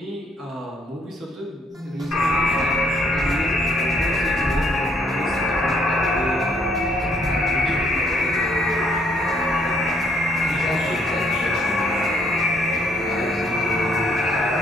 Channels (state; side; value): normal; both; correlation 0.67